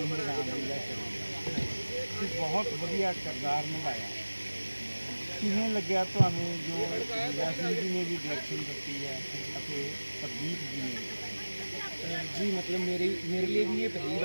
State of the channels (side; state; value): both; inverted; correlation -1.00